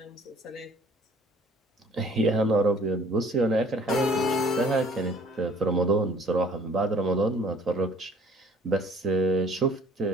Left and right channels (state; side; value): normal; both; correlation 0.54